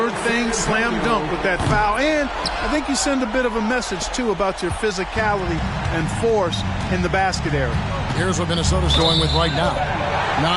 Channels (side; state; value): both; identical; correlation 1.00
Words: thing, slam dunk with that foul. And I think you send a bit of a message, too, about your physicality and force in the basket area. Here's what Minnesota's going with right now.